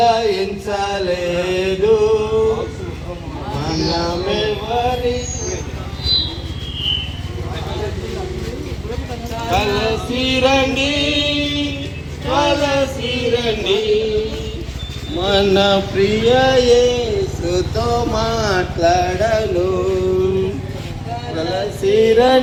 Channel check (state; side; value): identical; both; correlation 1.00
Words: మనమెవరి. కలసిరండి కలసిరండి మన ప్రియ యేసుతో మాట్లాడను.